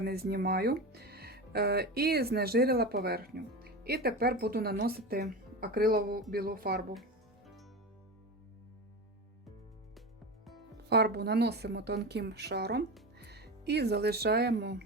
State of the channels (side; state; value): both; normal; correlation 0.24